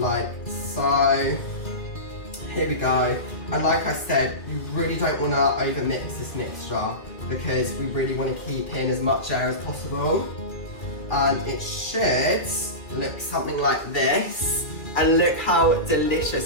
so. Here we go. And like I said, you really don't want to overmix this mixture, because we really want to keep in as much air as possible. And it should look something like this. And look how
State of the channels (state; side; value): late; right; 2.3 ms